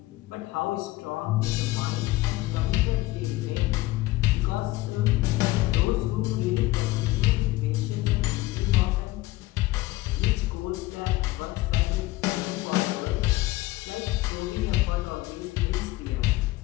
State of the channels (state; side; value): quieter; right; 18.6 dB